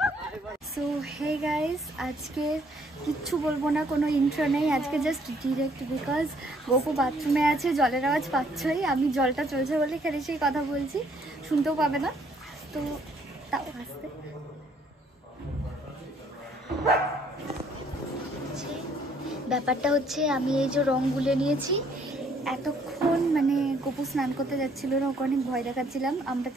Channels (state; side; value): normal; both; correlation 0.64